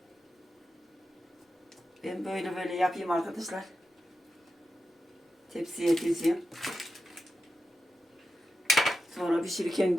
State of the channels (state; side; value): normal; both; correlation 0.90